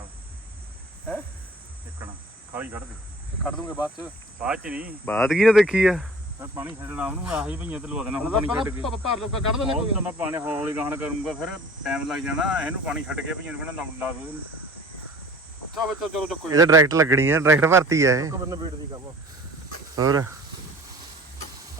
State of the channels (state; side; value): normal; both; correlation 0.46